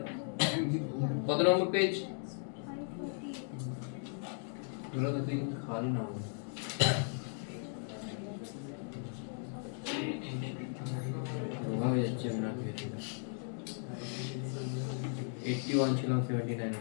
কত নম্বর পেজ? দুটো তো তুই খালি না 51 ছিলাম 79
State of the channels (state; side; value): silent; right; 53 dB below the other